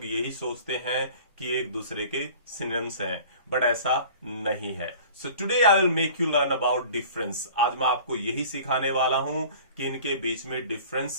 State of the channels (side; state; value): both; inverted; correlation -0.45